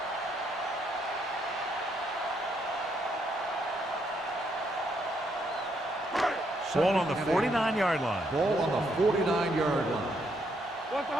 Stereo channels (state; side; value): normal; both; correlation 0.74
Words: Ball on the 49-yard line. Ball on the 49-yard line. What's the